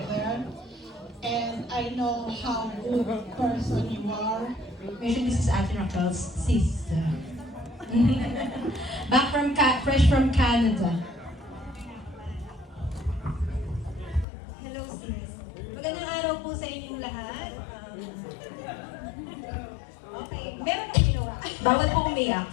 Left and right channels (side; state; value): right; drops out; at 14.2 s